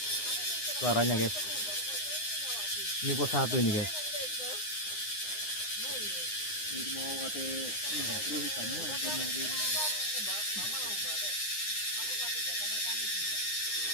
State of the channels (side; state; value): right; late; 9.7 ms